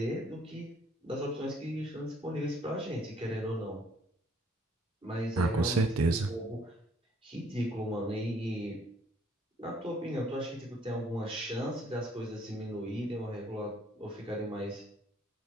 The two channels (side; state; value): both; normal; correlation 0.63